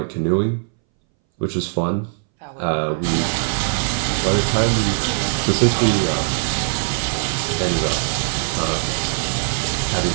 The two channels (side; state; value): left; silent; 63 dB below the other